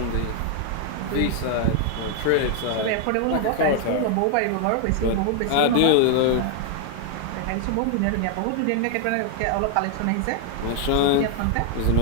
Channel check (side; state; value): both; different; correlation 0.00